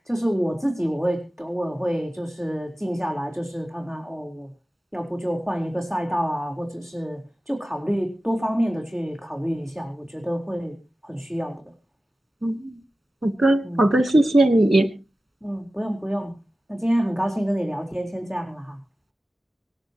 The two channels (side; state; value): both; normal; correlation 0.95